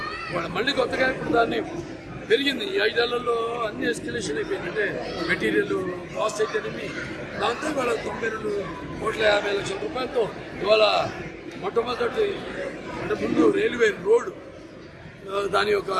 వాళ్ళు మళ్ళీ కొత్తగా ఇప్పుడు దాన్ని పెరిగింది. ఈ 5 ఏళ్లలో అన్ని ఎస్కలేషన్ అయిపోయింది. అంటే మెటీరియల్ కాస్ట్ అయితేనేమి దాంతో ఇవాళ 92,50,00,000 రూపాయలతో ఇవాళ మొట్టమొదటి అంటే ముందు రైల్వే రోడ్ దాని యొక్క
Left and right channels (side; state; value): both; identical; correlation 1.00